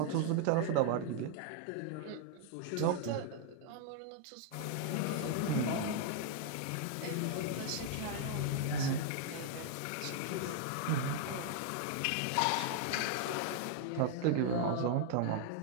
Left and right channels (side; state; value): both; different; correlation 0.00